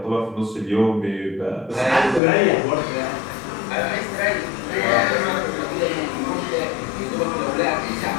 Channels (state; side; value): drops out; right; at 2.2 s